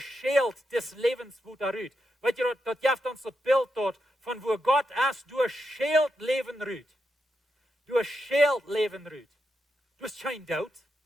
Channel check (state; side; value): normal; both; correlation 0.85